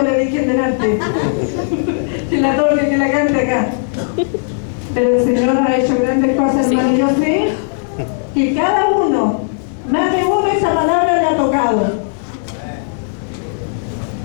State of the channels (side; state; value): right; silent; digital silence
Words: le dije delante que la toque, que la cante acá. Pero el Señor ha hecho grandes cosas, hermano. Yo sé que cada uno, más de uno, esa palabra le ha tocado.